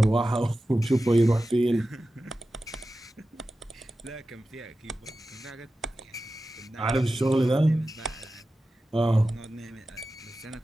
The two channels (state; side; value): normal; both; correlation 0.94